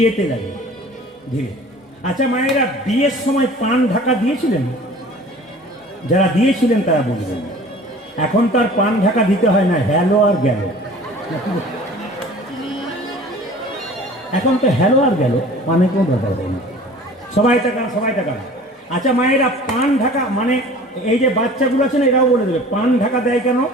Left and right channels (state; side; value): normal; both; correlation 0.45